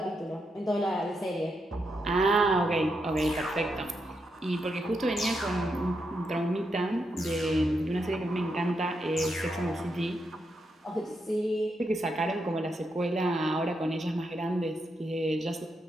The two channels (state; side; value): normal; both; correlation 0.83